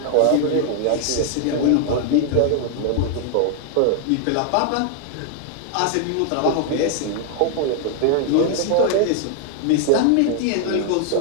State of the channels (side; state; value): both; different; correlation 0.00